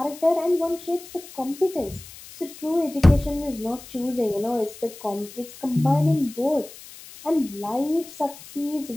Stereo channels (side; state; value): left; noise; hiss, 17 dB below the sound